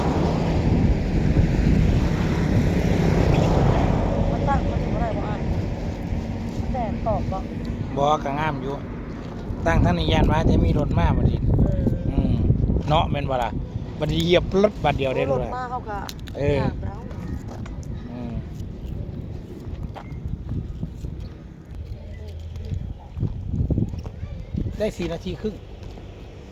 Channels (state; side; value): identical; both; correlation 1.00